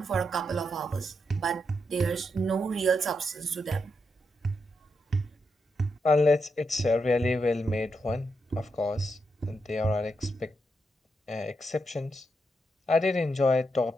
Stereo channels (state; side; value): normal; both; correlation 0.83